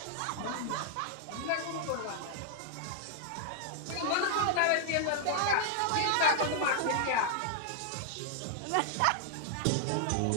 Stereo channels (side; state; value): both; different; correlation -0.01